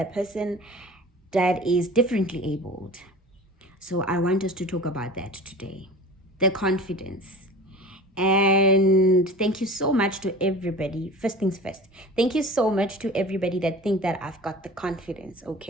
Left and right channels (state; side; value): normal; both; correlation 0.38